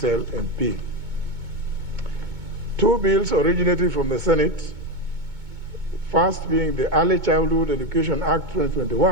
MP. 2 bills originating from the Senate, first being the Early Childhood Education Act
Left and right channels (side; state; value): left; late; 2.2 ms